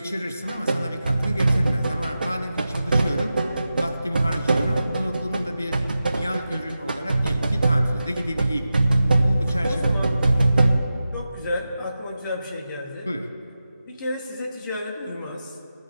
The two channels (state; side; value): inverted; both; correlation -0.92